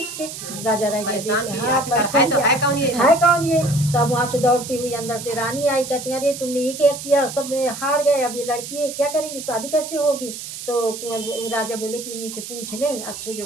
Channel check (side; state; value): right; noise; hiss, 10 dB below the sound